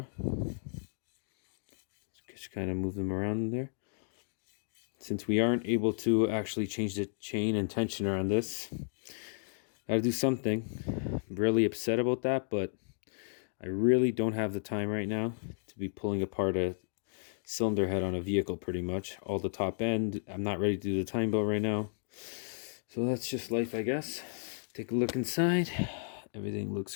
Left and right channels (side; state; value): right; silent; digital silence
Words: Just kind of move them around in there. Since we aren't able to actually change the chain and tensioner on this, gotta do something. I'm really upset about that, but I really don't have the time right now to be pulling apart a cylinder head on a vehicle pretty much. All the top end, I'm not ready to do the time belt right now. So that's just life, I guess. Take a look inside. Everything looks